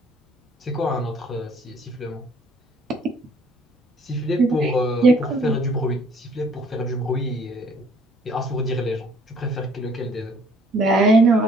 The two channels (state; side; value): normal; both; correlation 0.59